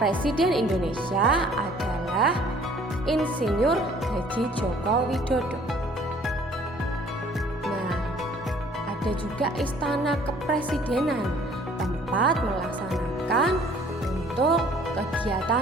Indonesia adalah Insinyur Haji Joko Widodo. Nah, ada juga Istana Kepresidenan, tempat melaksanakan untuk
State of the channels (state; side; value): normal; both; correlation 0.56